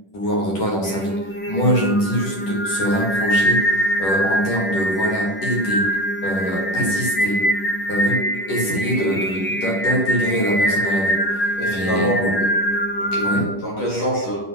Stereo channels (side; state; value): right; late; 10 ms